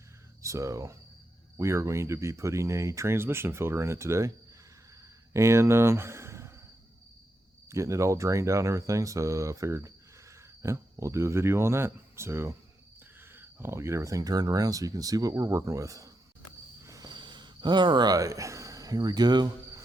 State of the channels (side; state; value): both; normal; correlation 0.85